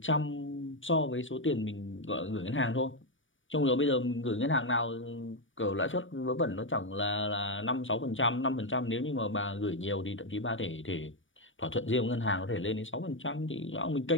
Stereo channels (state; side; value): late; right; 0.56 ms